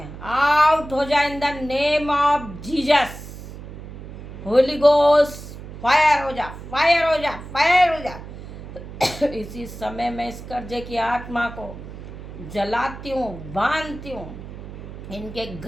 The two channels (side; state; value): right; noise; hum, 13 dB below the sound